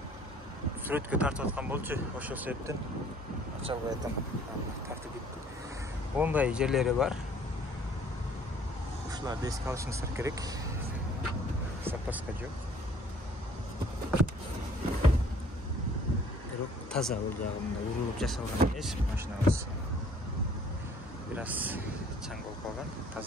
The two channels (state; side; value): normal; both; correlation 0.56